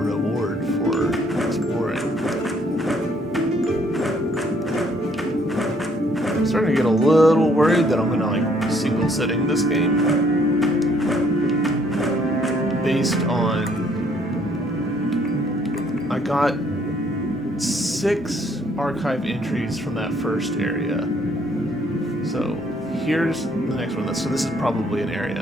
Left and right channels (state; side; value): normal; both; correlation 0.65